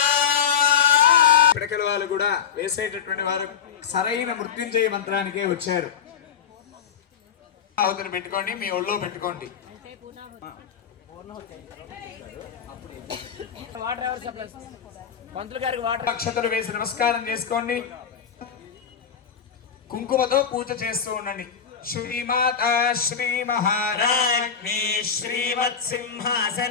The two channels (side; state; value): right; quieter; 7.5 dB